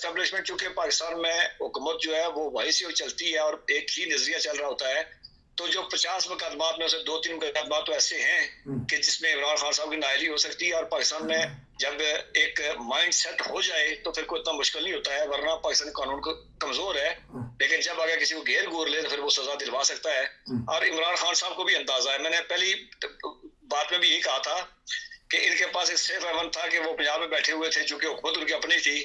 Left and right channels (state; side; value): identical; both; correlation 1.00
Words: चूंकि पाकिस्तान में हुकूमत जो है वो वहीं से चलती है और एक ही नजरिया चल रहा होता है। तो जो 50 मुकदमात में से 2-3 मुकदमात तो ऐसे हैं कि जिसमें इमरान खान साहब की नाअहली हो सकती है, और पाकिस्तान में जब एक माइंड सेट हो जाए तो फिर कोई इतना मुश्किल नहीं होता है, वरना पाकिस्तानी कानून को कमजोर है, लेकिन जब अगर किसी को घेर घूर ले तो फिर वो सजा दिलवा सकता है। और इमरान खान साहब को भी अंदाजा है, मैंने पहली बात में भी यही कहा था कि इनके पास एक सेफ हेवन था कि वो पंजाब में बैठे हुए थे, चूंकि हुकूमत उनकी अपनी थी